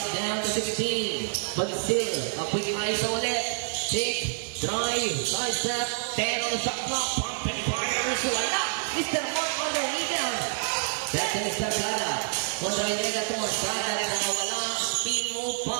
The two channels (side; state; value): left; silent; digital silence